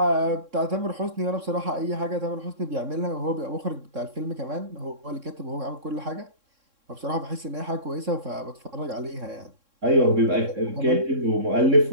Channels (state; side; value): late; left; 3.6 ms